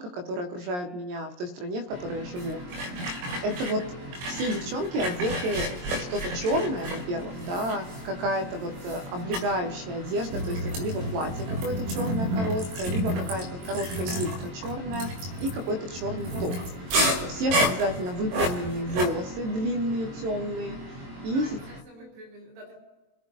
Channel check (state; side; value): late; left; 22 ms